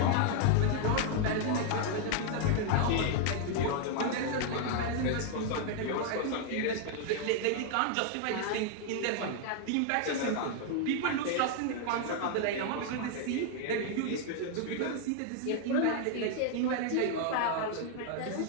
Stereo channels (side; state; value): both; different; correlation 0.00